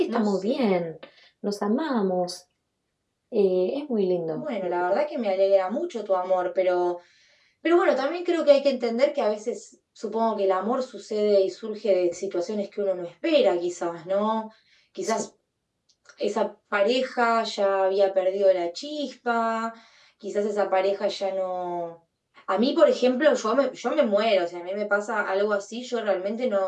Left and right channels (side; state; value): both; identical; correlation 1.00